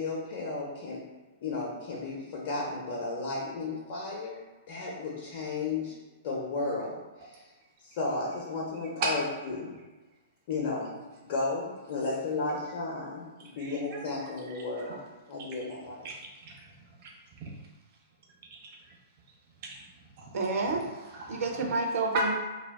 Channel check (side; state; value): both; inverted; correlation -0.38